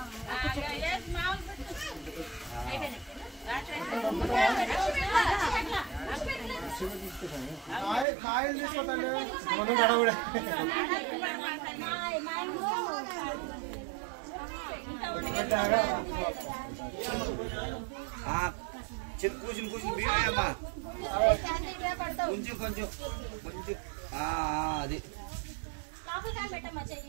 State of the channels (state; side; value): drops out; left; at 8.1 s